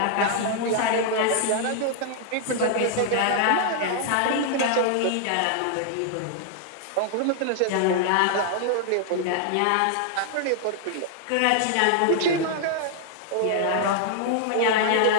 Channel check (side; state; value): both; different; correlation 0.00